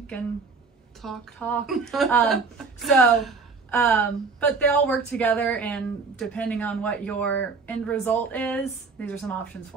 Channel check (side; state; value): left; quieter; 4.7 dB